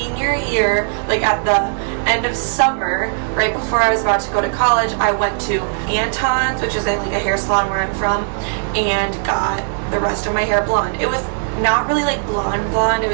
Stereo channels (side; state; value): left; silent; digital silence